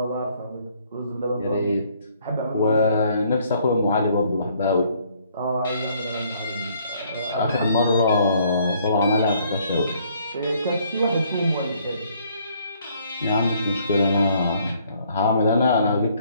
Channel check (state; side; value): inverted; both; correlation -0.65